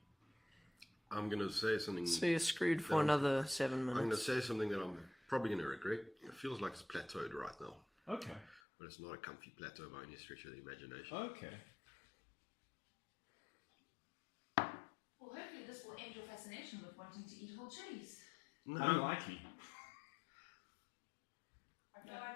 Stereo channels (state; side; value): drops out; right; at 8.6 s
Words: I'm going to say something. So you're screwed for No. another 7 I'm going to minutes. say something that I'm probably going to regret. It feels like it's plateaued right now, Okay. but it's not a comfy plateau by any stretch of the imagination. Okay. Well, hopefully this will end your fascination with wanting to eat whole chilies. No, Unlikely.